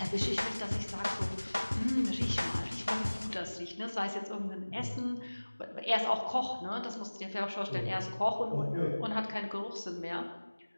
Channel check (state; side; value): inverted; both; correlation -1.00